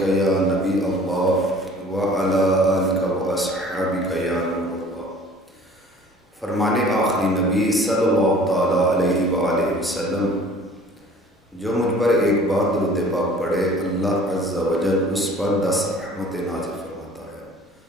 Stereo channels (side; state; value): both; normal; correlation 0.49